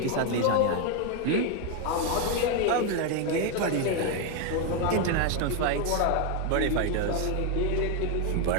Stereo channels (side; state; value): both; different; correlation 0.01